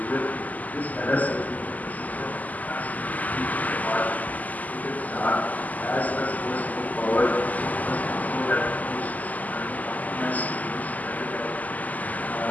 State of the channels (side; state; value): right; late; 0.079 ms